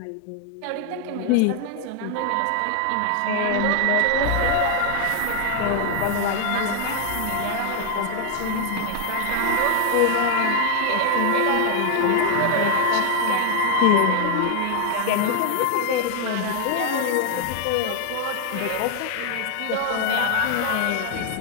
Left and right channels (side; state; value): both; different; correlation 0.00